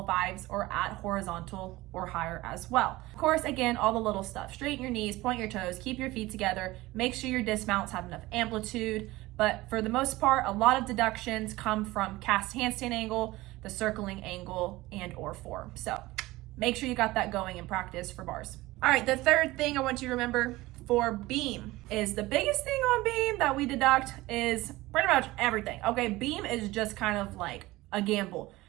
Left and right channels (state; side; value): quieter; left; 19.1 dB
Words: 5s, are at horizontal or higher as well. Of course, again, all the little stuff. Straighten your knees, point your toes, keep your feet together, make sure your dismounts have enough amplitude, but for the most part, a lot of deductions come from cast handstand angle, the circling angle, and or form. So make sure you got that going in practice for bars. All right, the third thing I want you to remember for beam is the biggest thing on beam that we deduct is pretty much everything. Okay, beam is just kind of like a gamble.